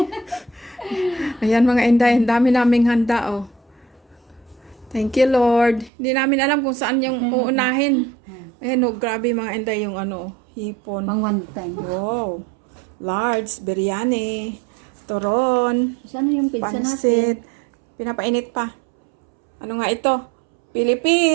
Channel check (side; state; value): left; drops out; at 5.9 s